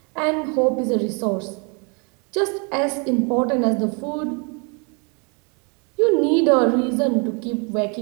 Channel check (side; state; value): left; quieter; 34.8 dB